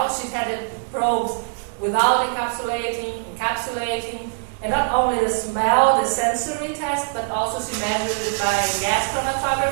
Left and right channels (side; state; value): left; silent; 64 dB below the other